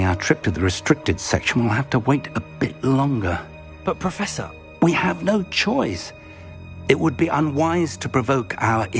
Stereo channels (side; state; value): both; identical; correlation 1.00